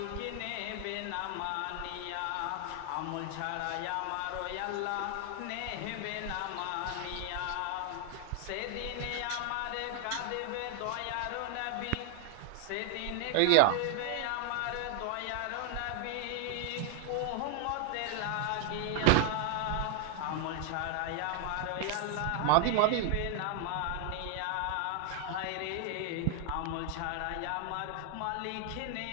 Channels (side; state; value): both; different; correlation 0.00